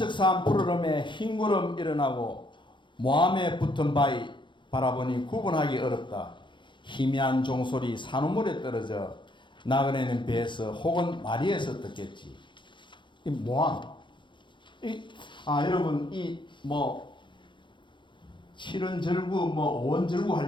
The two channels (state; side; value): late; right; 0.23 ms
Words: 푸르름에 흰 구름 일어나고, 모함에 붙은 바위 바라보니 구분하기 어렵다. 희미한 종소리 산우물에 떨어져 나그네는 배에서 혹은 마리에서 듣겠지. 이 모함. 여러분 칠원절구 오원절구